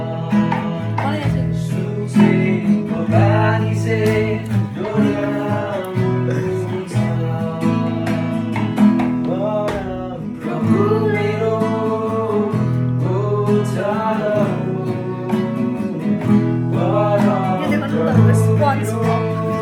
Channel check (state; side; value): identical; both; correlation 1.00